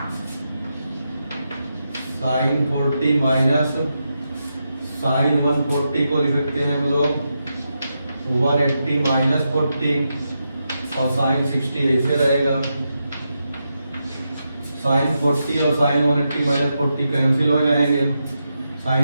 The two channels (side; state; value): both; inverted; correlation -0.86